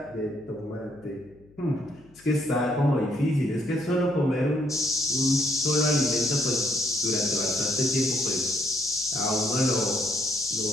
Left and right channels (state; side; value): noise; left; hum, 27 dB below the sound